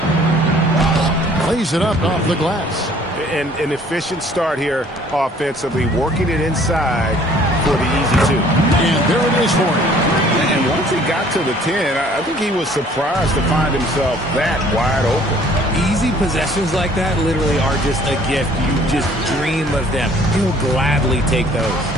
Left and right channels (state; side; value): normal; both; correlation 0.56